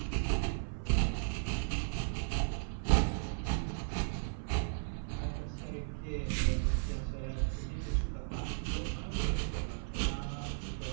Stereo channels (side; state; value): left; silent; 54 dB below the other